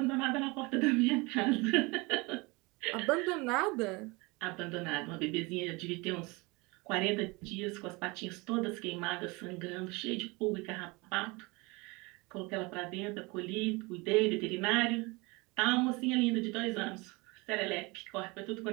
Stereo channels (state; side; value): quieter; left; 25.6 dB